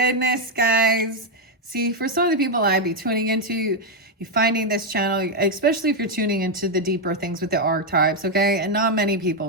guys. See, for some of the people I'd be tuning into, you're finding this channel, especially if you're tuning into the deeper things with the archetypes, okay? And not many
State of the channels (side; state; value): both; normal; correlation 0.01